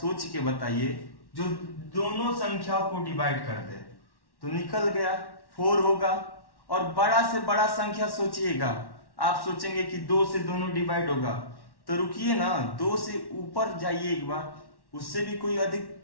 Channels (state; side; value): late; right; 1.1 ms